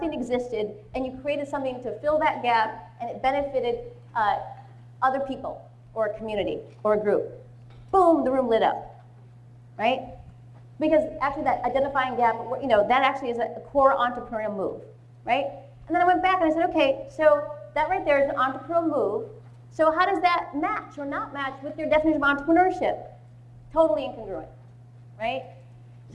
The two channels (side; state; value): both; identical; correlation 1.00